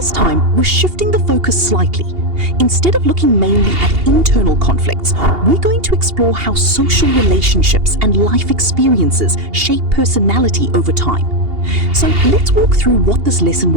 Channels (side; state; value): left; late; 2.8 ms